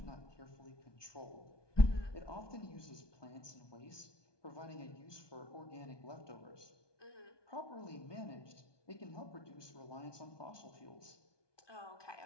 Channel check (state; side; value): late; right; 1.2 ms